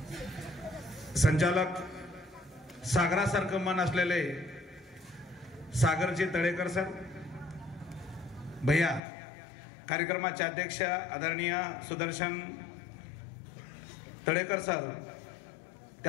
संचालक सागरासारखं मन असलेले सागरजी तळेकर सर, भैया कार्यक्रमाचे अध्यक्ष आदरणीय सुदर्शन तळेकर सर,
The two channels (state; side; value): drops out; right; at 9.0 s